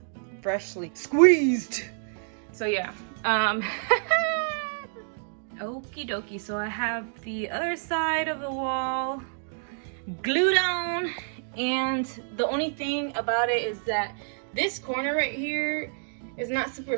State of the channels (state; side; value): silent; left; digital silence